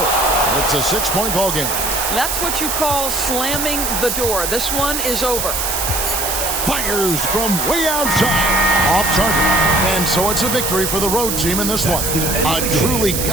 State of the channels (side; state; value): right; noise; hiss, 1 dB below the sound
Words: It's a 6-point ball game. That's what you call slamming the door. This one is over. Fires from way outside. Off target. And so it's a victory for the road team in this one. A truly